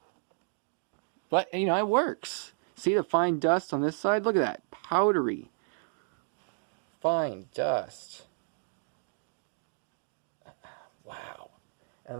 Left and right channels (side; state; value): left; silent; digital silence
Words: But, you know, it works. See the fine dust on this side? Look at that. Powdery. Fine dust. Wow.